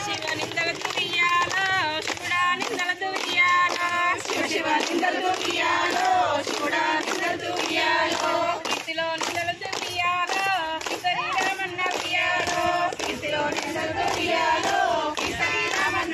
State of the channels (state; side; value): identical; both; correlation 1.00